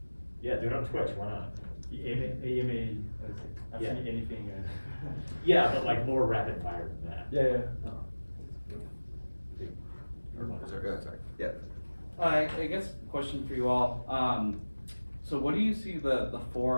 Yeah, do it on Twitch, why not? AMA, I've Yeah. seen anything. Yeah, but like more rapid fire than that. Yeah. Sorry. Yeah. I guess question for you all. So what do you see the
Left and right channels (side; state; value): both; inverted; correlation -1.00